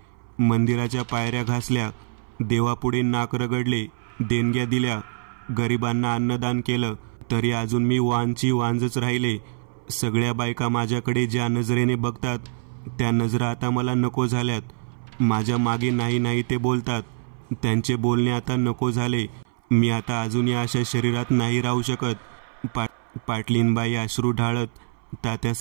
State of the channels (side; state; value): left; silent; 60 dB below the other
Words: मंदिराच्या पायऱ्या घासल्या, देवापुढे नाक रगडले, देणग्या दिल्या, गरिबांना अन्नदान केलं, तरी अजून मी वांची वांजच राहिले. सगळ्या बायका माझ्याकडे ज्या नजरेने बघतात त्या नजरा आता मला नको झाल्यात. माझ्या मागे नाही नाही ते बोलतात. त्यांचे बोलणे आता नको झाले. मी आता अजून या अशा शरीरात नाही राहू शकत. पाटलीनबाई अश्रू ढाळत